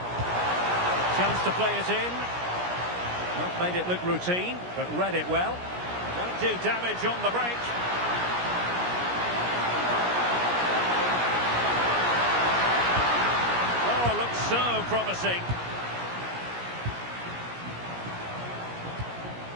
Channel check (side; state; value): left; late; 17 ms